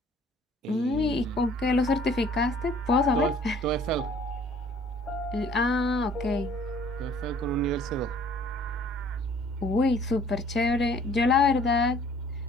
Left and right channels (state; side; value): normal; both; correlation 0.56